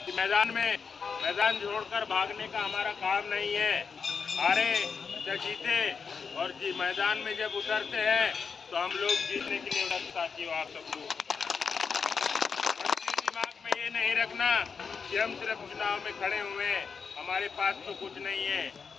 कि मैदान छोड़कर भागने का हमारा काम नहीं है। हारे या जीते और मैदान में जब उतरते हैं तो हम लोग जीतने के लिए साथियों आप सब लोग दिमाग में ये नहीं रखना कि हम सिर्फ चुनाव में खड़े हुए हैं, हमारे पास तो कुछ नहीं है,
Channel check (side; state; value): right; quieter; 5.7 dB